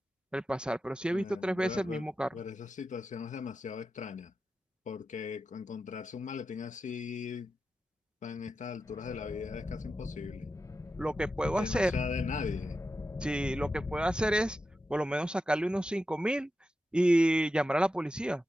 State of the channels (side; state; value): both; normal; correlation 0.90